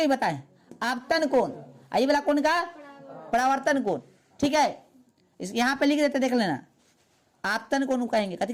बताएं? आपतन कोण। ये वाला कोण का परावर्तन कोण, ठीक है। इस यहाँ पे लिख देते, देख लेना, आपतन कोण कहेंगे, कथी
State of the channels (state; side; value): identical; both; correlation 1.00